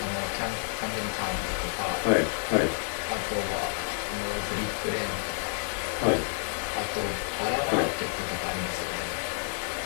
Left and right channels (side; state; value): right; silent; 57 dB below the other